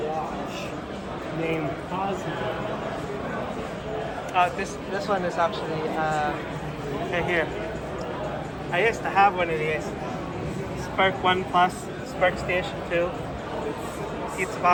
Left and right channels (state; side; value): identical; both; correlation 1.00